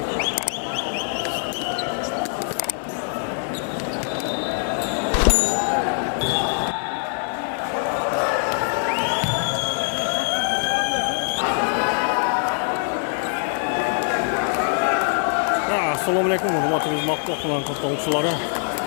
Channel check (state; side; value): silent; right; 63 dB below the other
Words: Assalamu alaikum, hurmatli xizmatga qilan qatnashchilari.